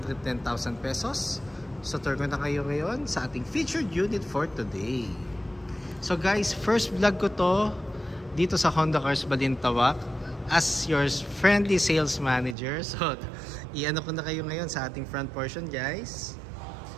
pesos. So, tour ko na kayo ngayon sa ating featured unit for today. So guys, first vlog ko to dito sa Honda Cars Balintawak as your friendly sales manager. So, i-ano ko na kayo ngayon sa ating front portion, guys.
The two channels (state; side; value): drops out; left; at 12.6 s